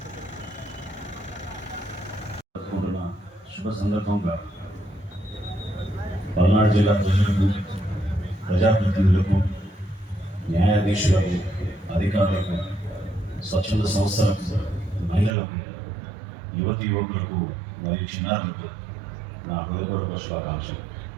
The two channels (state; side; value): drops out; left; at 15.4 s